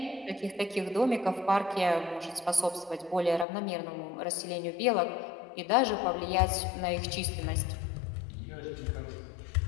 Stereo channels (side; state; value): right; drops out; at 3.5 s